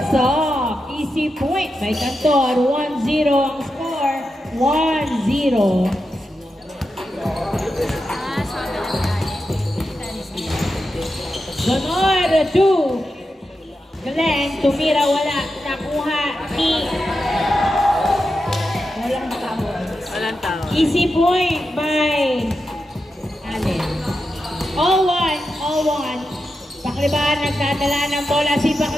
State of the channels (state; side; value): normal; both; correlation 0.89